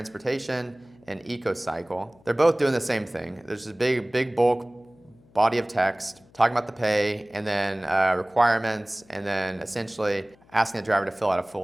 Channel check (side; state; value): left; noise; hum, 29 dB below the sound